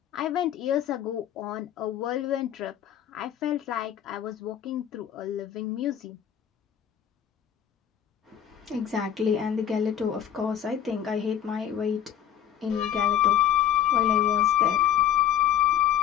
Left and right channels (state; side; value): quieter; right; 10.1 dB